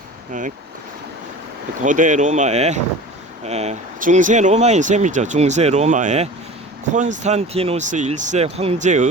고대 로마의 중세 로마인 셈이죠. 중세 로마의 콘스탄티누스 1세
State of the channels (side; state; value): both; normal; correlation 0.37